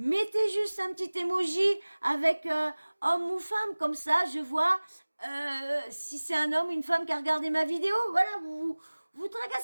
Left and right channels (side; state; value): both; inverted; correlation -1.00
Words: juste un petit emoji avec homme ou femme, comme ça je vois si c'est un homme ou une femme qui a regardé ma vidéo. Voilà, vous